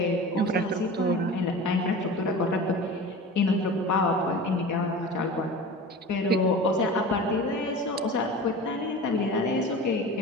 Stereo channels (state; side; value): normal; both; correlation 0.34